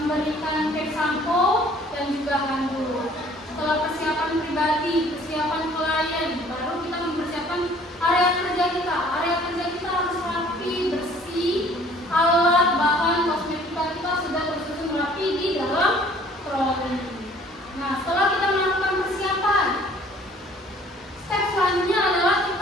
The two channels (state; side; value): normal; both; correlation 0.55